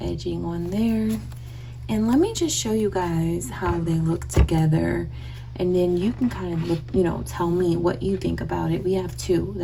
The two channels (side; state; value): both; identical; correlation 1.00